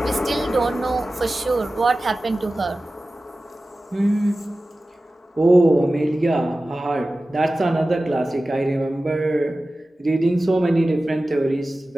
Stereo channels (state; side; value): normal; both; correlation 0.96